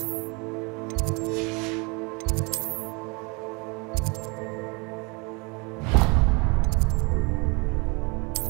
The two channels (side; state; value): left; quieter; 30.1 dB